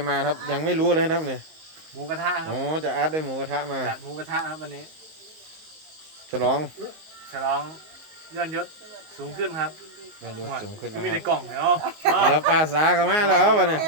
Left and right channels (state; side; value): late; left; 19 ms